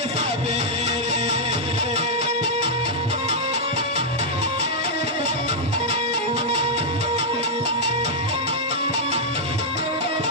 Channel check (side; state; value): both; normal; correlation -0.05